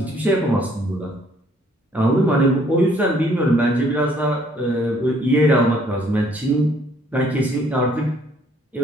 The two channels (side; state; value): both; normal; correlation 0.63